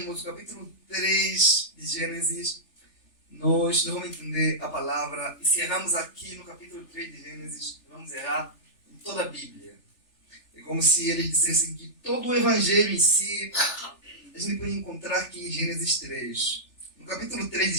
o capítulo 3 de Gênesis, nós não vamos entender a palavra. E se errarmos aqui no capítulo 3 de Gênesis, vamos errar em toda a Bíblia. É como se eles dissessem que todo o Evangelho em si, a gente pode encontrar aqui em Gênesis 3. No capítulo 3 de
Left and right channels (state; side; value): late; right; 3.4 ms